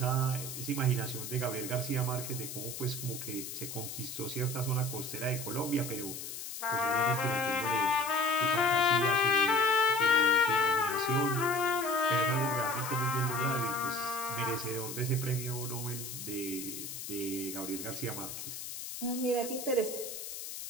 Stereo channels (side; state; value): left; noise; hiss, 8 dB below the sound